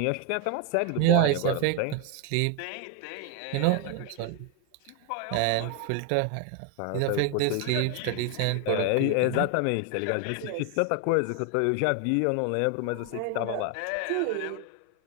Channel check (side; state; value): both; different; correlation 0.01